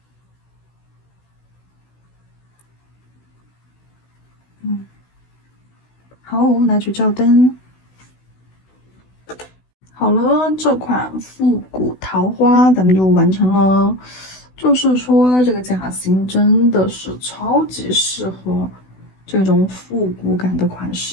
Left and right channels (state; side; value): late; right; 16 ms